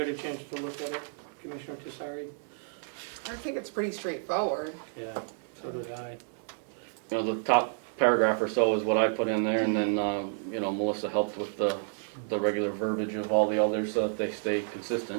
a chance to look at it, Commissioner Tessari? I think it's pretty straightforward. Yeah, so did I. You know, the top paragraph or so is what I put in there, and then, you know, Melissa helped with the regular verbiage of all the others so that they stay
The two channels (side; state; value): left; silent; digital silence